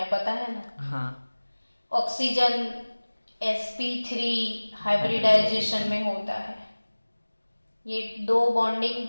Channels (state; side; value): inverted; both; correlation -1.00